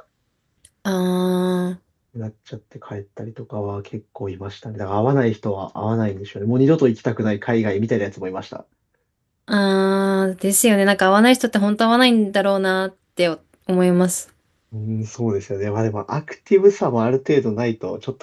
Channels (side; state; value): both; identical; correlation 1.00